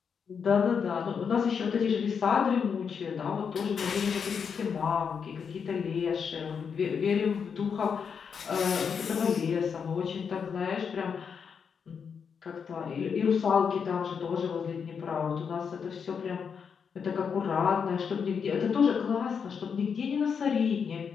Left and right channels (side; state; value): right; quieter; 6.5 dB